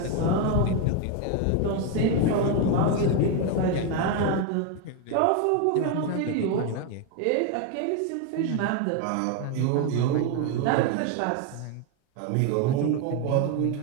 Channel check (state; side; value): different; both; correlation 0.02